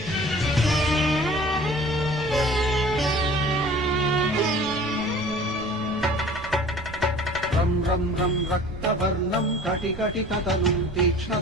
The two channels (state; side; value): noise; right; rumble, 14 dB below the sound